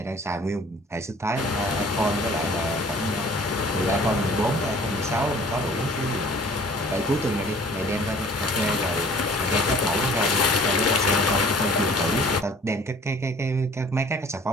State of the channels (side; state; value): both; normal; correlation 0.51